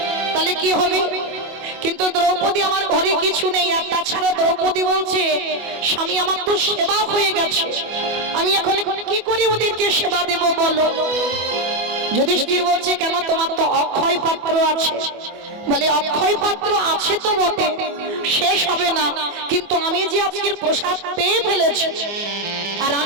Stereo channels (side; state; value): left; late; 24 ms